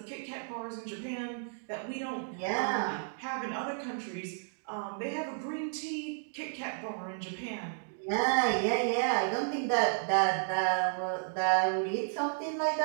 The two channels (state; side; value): silent; left; digital silence